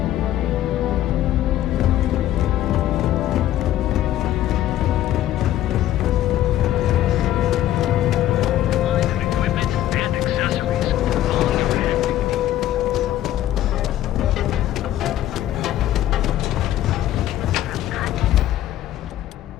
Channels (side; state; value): right; quieter; 13.0 dB